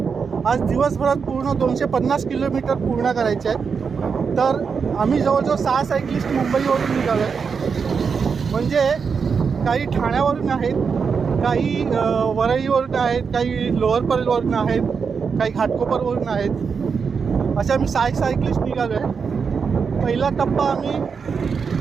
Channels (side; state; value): left; quieter; 5.8 dB